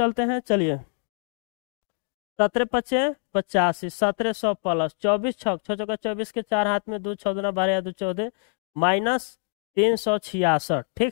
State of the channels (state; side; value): silent; right; digital silence